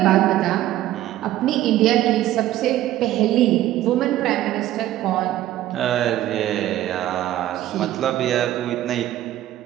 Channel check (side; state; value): left; quieter; 13.8 dB